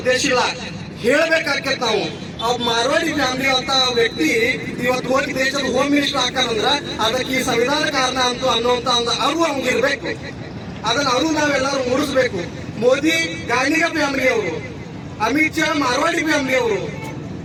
ಉದ್ದೇಶ ಇಲ್ಲ, ಹೇಳ್ಬೇಕಾಕೇತ್ ನಾವು. ಅವ್ ಮಾರ್ವಾಡಿ ಫ್ಯಾಮಿಲಿ ಅಂತ ವ್ಯಕ್ತಿ ಇವತ್ತು ಹೋಗಿ ದೇಶದ ಹೋಮ್ ಮಿನಿಸ್ಟರ್ ಹಾಕಾರಂದ್ರ ಅದಕ್ಕೆ ಈ ಸಂವಿಧಾನ ಕಾರಣ ಅಂತ ಅನ್ನುವಂತ ಒಂದು ಅರಿವು ಅವ್ನಿಗಿರ್ಬೇಕು. ಅದನ್ನ ಅವರು ನಾವೆಲ್ಲರೂ ಮೂಡಿಸ್ಬೇಕು. ಮೋದಿ ಗಾಂಧಿಗ ಫ್ಯಾಮಿಲಿ ಅವರು, ಅಮಿತ್ ಶಾ ಮಾರ್ವಾಡಿ ಫ್ಯಾಮಿಲಿ ಅವರು.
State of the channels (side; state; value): both; identical; correlation 1.00